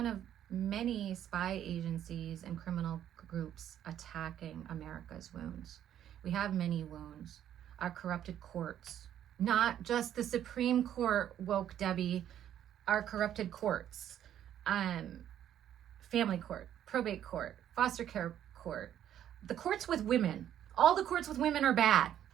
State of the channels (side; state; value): left; quieter; 10.7 dB